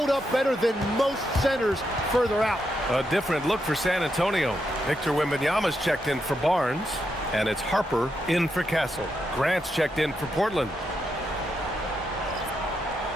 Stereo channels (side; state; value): both; normal; correlation 0.82